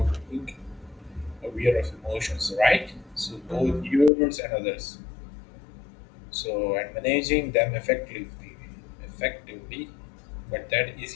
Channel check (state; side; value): drops out; right; at 4.1 s